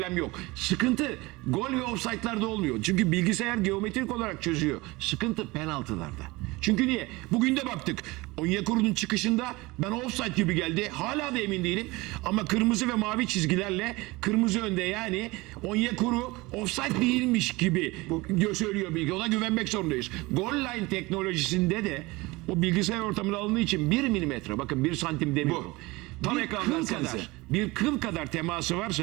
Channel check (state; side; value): quieter; left; 22.3 dB